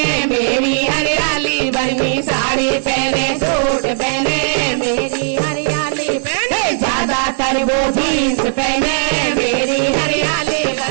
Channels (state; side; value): silent; left; digital silence